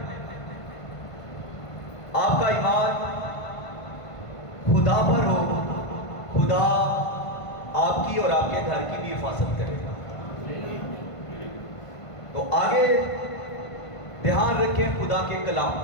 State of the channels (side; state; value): right; late; 1.5 ms